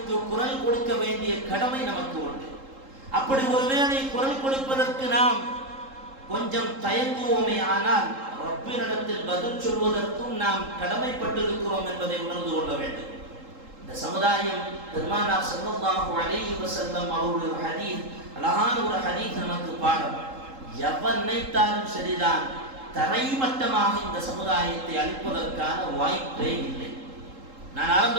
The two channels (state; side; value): late; left; 3.8 ms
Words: குரல் கொடுக்க வேண்டிய கடமை நமக்கு உண்டு. அப்படி ஒருவேளை குரல் கொடுப்பதற்கு நாம் கொஞ்சம் தயங்குவோமே, ஆனால் ரப்பினிடத்தில் பதில் சொல்வதற்கும் நாம் கடமைப்பட்டிருக்கிறோம் என்பதை உணர்ந்து கொள்ள வேண்டும். இந்த சமுதாயம் பெருமானார் ஸல்லல்லாஹு அலைஹி வஸல்லம் அவருடைய ஹதீஸ், அழகான ஒரு ஹதீஸ் நமக்கு பாடம். எவன் நினைத்தாலும் சரிதான், தரைமட்டமாக இந்த சமுதாயத்தை அழிப்பதற்கான வாய்ப்பே இல்லை. நான்